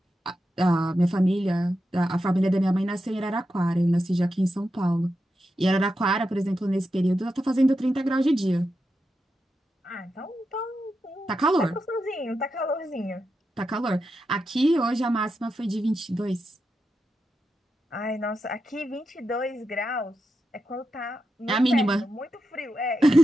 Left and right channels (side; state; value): both; normal; correlation 0.88